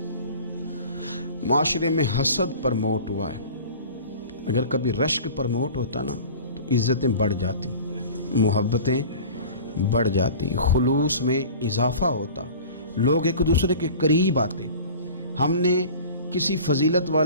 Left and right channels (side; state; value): both; inverted; correlation -0.40